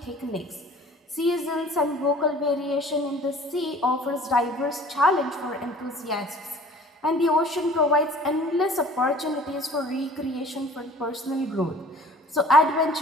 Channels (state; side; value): normal; both; correlation 0.49